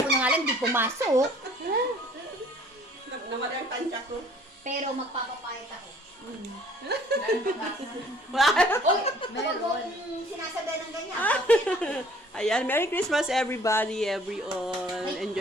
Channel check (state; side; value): normal; both; correlation 0.55